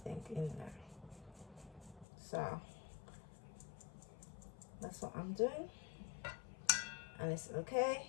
in there. So that's what I'm doing, and it's okay,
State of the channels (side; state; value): right; drops out; at 2.1 s